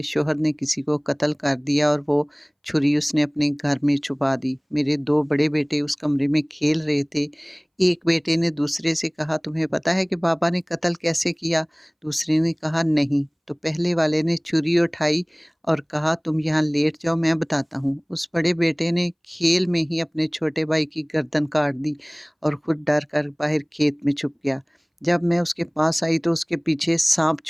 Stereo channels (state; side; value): identical; both; correlation 1.00